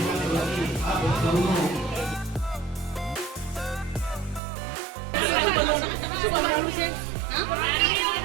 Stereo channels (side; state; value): left; drops out; at 4.4 s